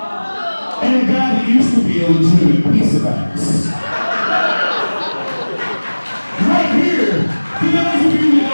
and a guy that used to be a legitimate piece of ass. Right here, for those of you that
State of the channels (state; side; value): inverted; both; correlation -1.00